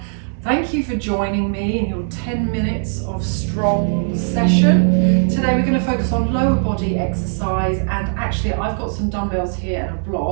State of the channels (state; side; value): silent; left; 66 dB below the other